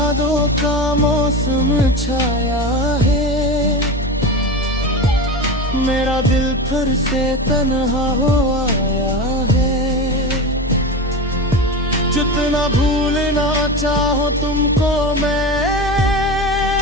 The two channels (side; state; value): both; normal; correlation 0.25